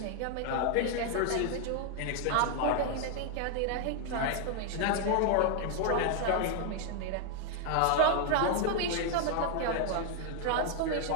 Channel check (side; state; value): both; different; correlation 0.00